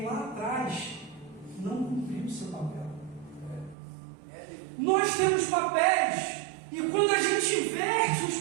lá atrás não cumpriu o seu papel. Nós temos papéis, e quando a gente inverte os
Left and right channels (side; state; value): left; drops out; at 3.8 s